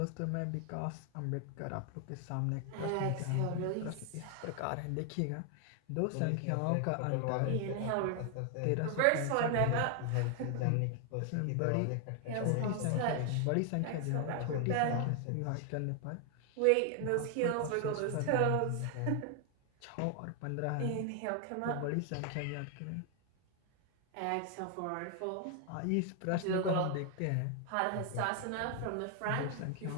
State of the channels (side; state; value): both; different; correlation 0.00